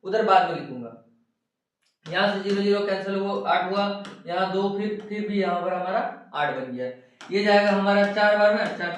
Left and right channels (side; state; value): both; identical; correlation 1.00